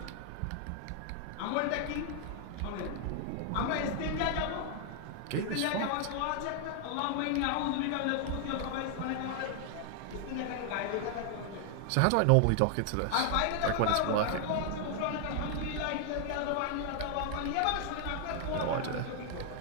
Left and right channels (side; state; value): both; different; correlation 0.00